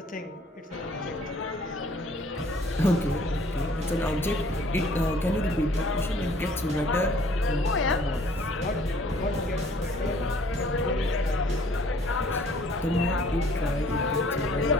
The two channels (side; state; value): both; normal; correlation 0.57